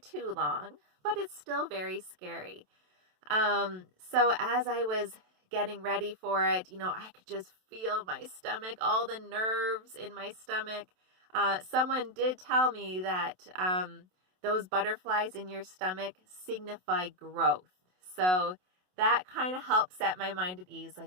long, but it's still very scary. So as I was getting ready for it, I could just feel my stomach, all the nerves in my stomach. Someone did tell me that those butterflies in your stomach signify growth. So that kind of helped set my mind at ease.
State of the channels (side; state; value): left; late; 27 ms